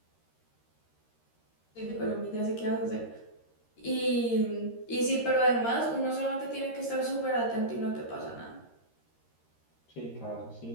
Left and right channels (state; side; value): late; right; 13 ms